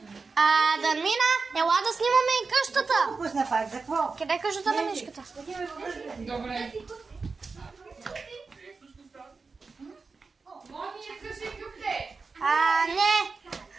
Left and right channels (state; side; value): quieter; left; 4.4 dB